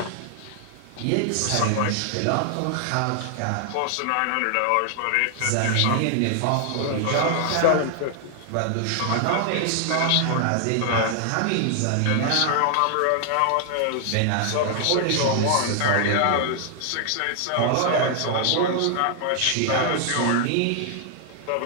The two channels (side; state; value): both; different; correlation 0.00